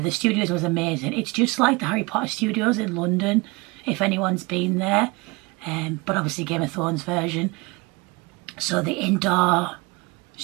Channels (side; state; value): left; quieter; 25.8 dB